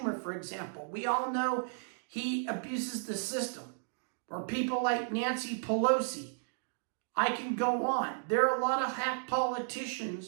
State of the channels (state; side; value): silent; left; digital silence